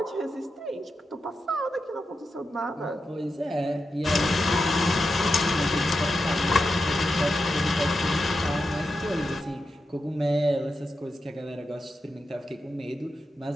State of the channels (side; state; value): both; normal; correlation 0.88